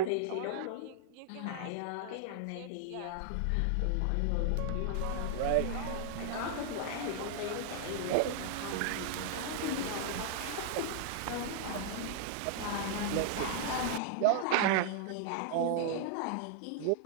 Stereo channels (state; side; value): different; both; correlation -0.01